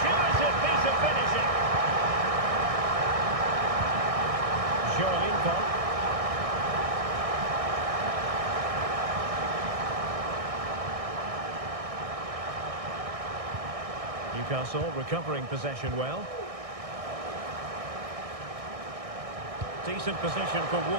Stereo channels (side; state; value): left; late; 1.6 ms